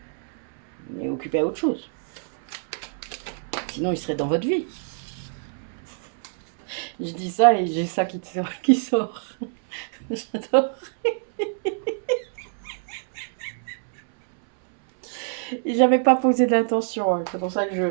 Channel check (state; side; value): silent; left; 62 dB below the other